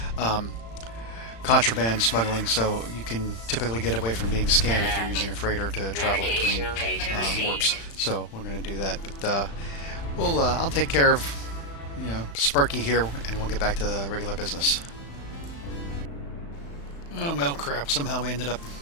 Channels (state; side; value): late; right; 35 ms